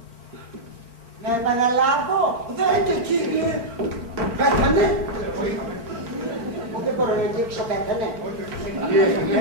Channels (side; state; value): left; late; 4.4 ms